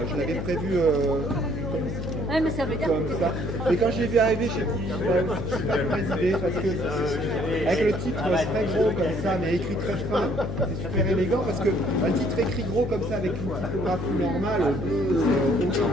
je l'avais prévu ouais, mais ça veut dire comme ça. Et quand je l'ai vu arriver, j'ai dit, c'est pas une mauvaise idée, parce que avec le titre très gros comme ça, mais écrit très fin, c'est super élégant, parce qu'un titre écrit gros comme ça, avec une typographie normale, c'est aucun.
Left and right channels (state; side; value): noise; left; hum, 4 dB below the sound